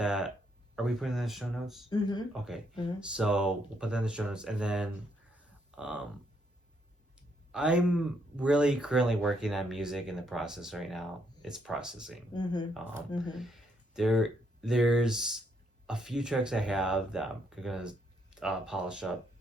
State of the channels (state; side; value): normal; both; correlation 0.73